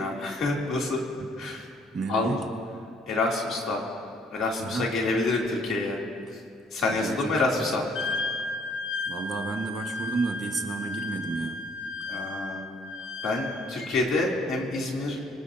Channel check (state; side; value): normal; both; correlation 0.62